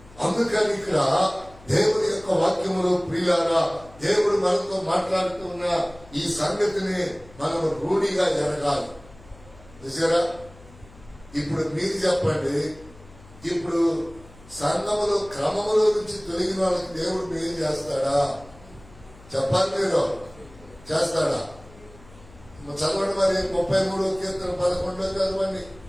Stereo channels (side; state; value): left; noise; hum, 23 dB below the sound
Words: అందుకని ఇక్కడ దేవుని యొక్క వాక్యములో ప్రియులారా, దేవుడు మనతో మాట్లాడుతున్న ఈ సంగతిని మనం రూఢిగా ఎరగాలి. చూసారా? ఇప్పుడు మీరు చెప్పండి, ఇప్పుడు సంఘములో క్రమములో నుంచి తొలగిన వాళ్ళకి దేవుడు మేలు చేస్తాడా? చెప్పాలి. మీరు చేస్తాడా? చదవండి మరి 33వ కీర్తన 11 చదవండి.